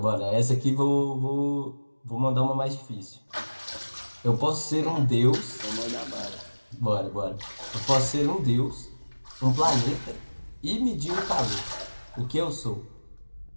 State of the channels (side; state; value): both; inverted; correlation -1.00